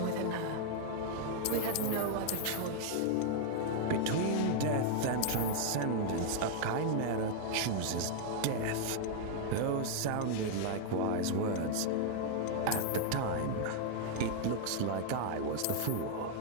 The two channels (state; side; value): different; both; correlation 0.00